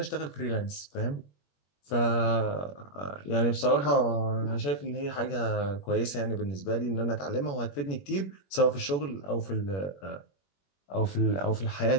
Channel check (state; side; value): late; right; 21 ms